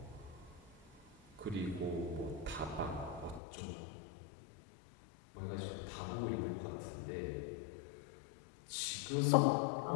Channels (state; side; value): drops out; right; at 3.4 s